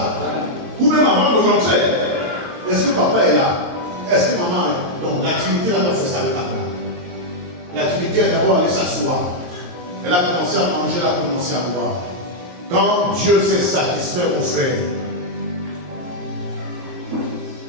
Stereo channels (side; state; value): left; late; 22 ms